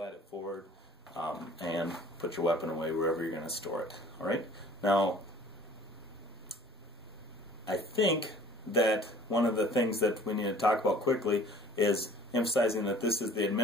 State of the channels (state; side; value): normal; both; correlation 0.51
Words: it forward and put your weapon away wherever you're going to store it. All right, now I think that one of the things that we need to talk about quickly is emphasizing that this is the